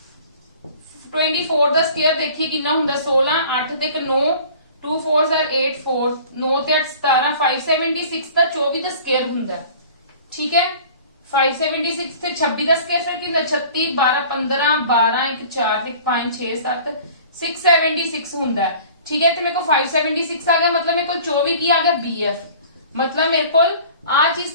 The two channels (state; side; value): inverted; both; correlation -0.46